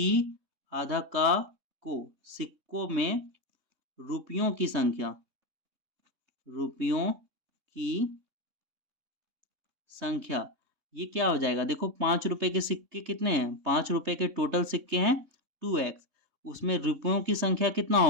आधा का को, सिक्कों में रुपयों की संख्या, रुपयों की संख्या, ये क्या हो जाएगा, देखो 5 रुपए के सिक्के कितने हैं, 5 रुपए के टोटल सिक्के हैं 2x, उसमें रुपयों की संख्या कितना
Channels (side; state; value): left; late; 3.6 ms